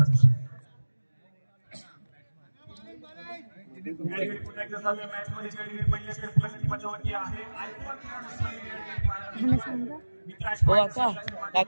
विषय. मॅच मध्ये पहिल्या षटकाची मजावती आहे. हो काका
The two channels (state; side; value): inverted; both; correlation -1.00